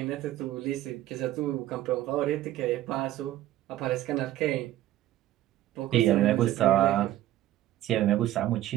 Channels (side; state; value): left; quieter; 14.0 dB